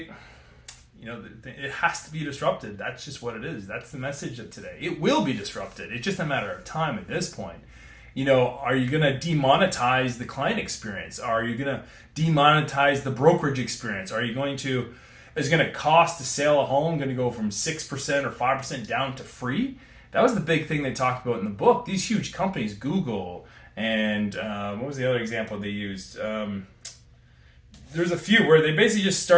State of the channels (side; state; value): both; identical; correlation 1.00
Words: it has to be disrupted. That's just what it is. That's the message of today. It will be disrupted. It's just a matter of time at this point. Are you going to demonetize the client experience? Are you going to demonetize the brokerage experience? Is it going to cost to sell a home going to go from 6% or 5% down to free? That was the big thing they talked about in the book. These huge companies, Google, and what was the other example they used? There's a few where they basically just